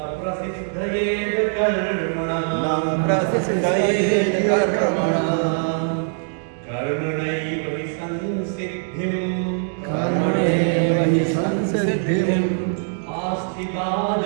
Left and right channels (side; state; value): left; silent; digital silence